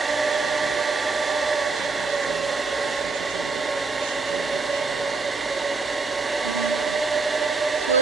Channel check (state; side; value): quieter; left; 4.1 dB